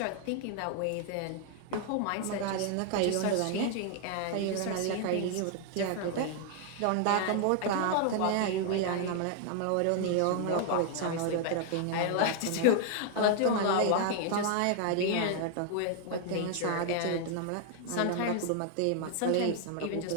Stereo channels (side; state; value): both; different; correlation 0.00